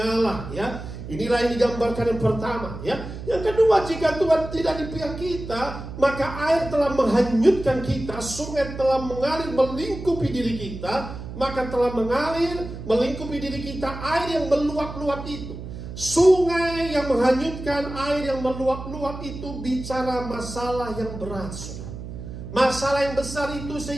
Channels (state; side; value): noise; right; hum, 10 dB below the sound